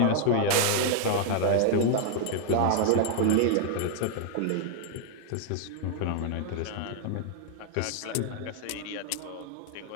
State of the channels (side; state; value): both; different; correlation 0.00